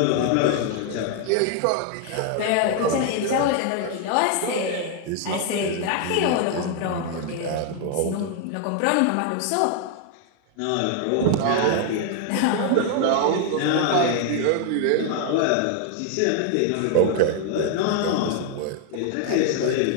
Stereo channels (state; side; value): different; both; correlation 0.00